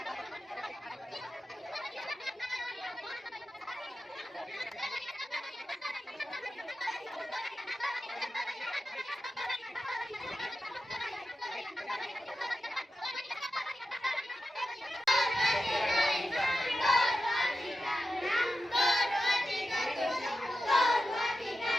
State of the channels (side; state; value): both; normal; correlation 0.92